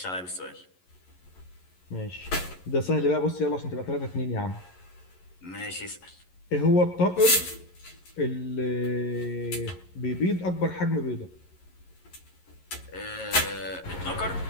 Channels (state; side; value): late; right; 11 ms